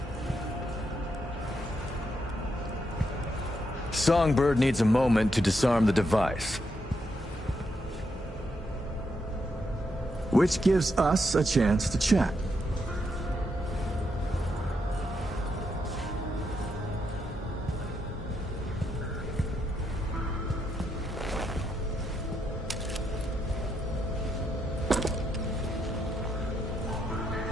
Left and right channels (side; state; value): both; normal; correlation 0.80